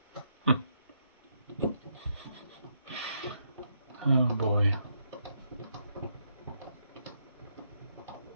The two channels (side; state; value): both; inverted; correlation -0.77